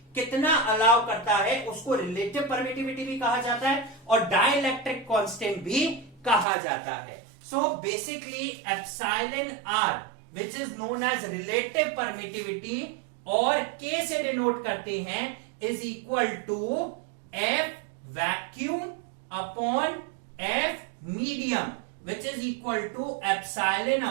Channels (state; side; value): drops out; left; at 6.5 s